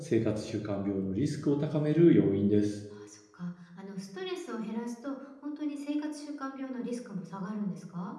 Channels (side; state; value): both; identical; correlation 1.00